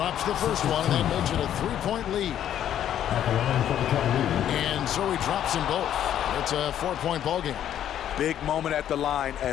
the first one, and that makes it a 3-point lead. And so he drops them both. It's a 4-point ball game. Big moment at the line.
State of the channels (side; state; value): right; quieter; 10.6 dB